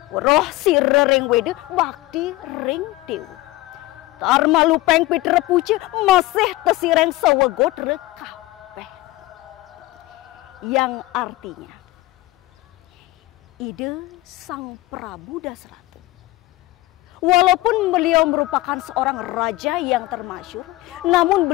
roh sire ring wede bakti ring dew. Tarma lupeng pitra puce masih tesireng sawegot rekapeh. Yang artinya, ide Sang Prabu Dasratu, walaupun beliau merupakan seorang raja yang termasyhur, namun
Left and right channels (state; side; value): quieter; right; 18.6 dB